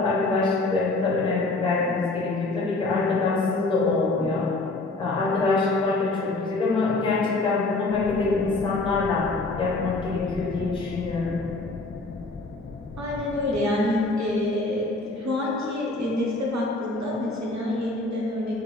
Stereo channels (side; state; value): right; quieter; 3.1 dB